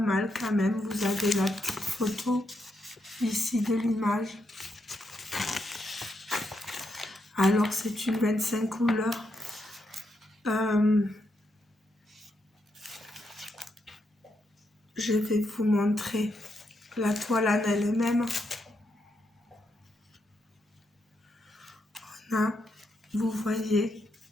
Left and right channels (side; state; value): both; normal; correlation 0.81